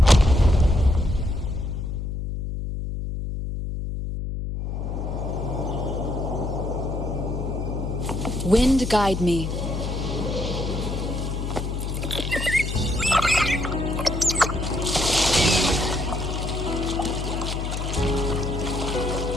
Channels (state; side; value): noise; left; hum, 4 dB below the sound